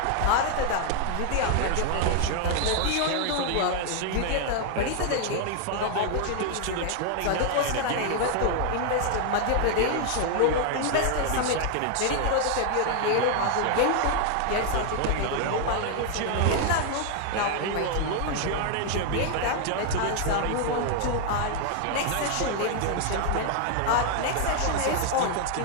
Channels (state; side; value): different; both; correlation 0.00